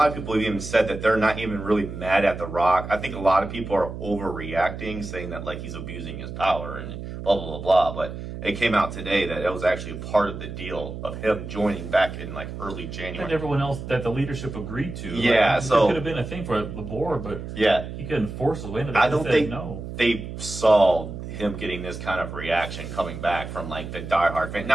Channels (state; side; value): noise; right; hum, 9 dB below the sound